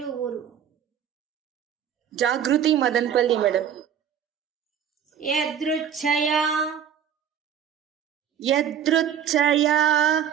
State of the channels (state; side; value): quieter; left; 8.6 dB